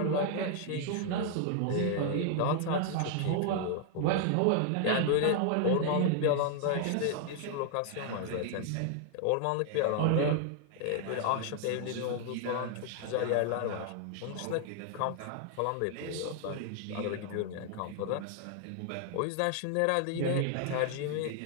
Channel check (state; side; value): different; both; correlation 0.00